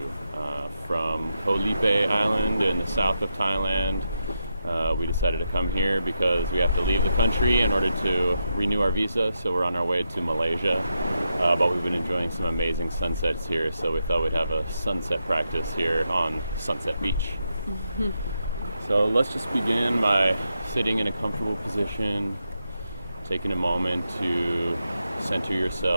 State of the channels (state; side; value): inverted; both; correlation -0.85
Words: from Koh Lipe Island in the south of Thailand. We decided to come here because we have to leave the country in order to renew our visa, so we're on our way to Malaysia. But we've been enjoying some amazing sunsets here, so we thought we'd have a sunset practice here on Sunset Beach. So let's just begin by sitting in a comfortable position, taking a moment to center